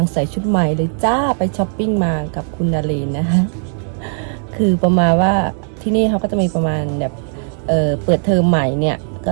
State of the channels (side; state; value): left; silent; 62 dB below the other